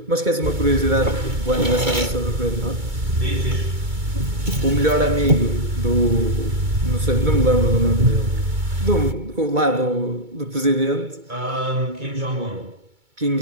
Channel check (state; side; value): late; left; 2.2 ms